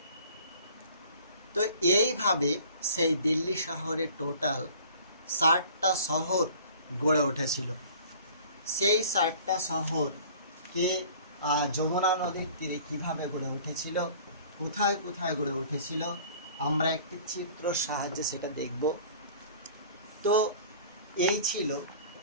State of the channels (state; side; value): inverted; both; correlation -0.48